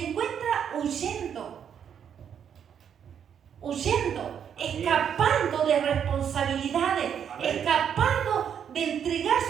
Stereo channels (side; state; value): left; quieter; 8.3 dB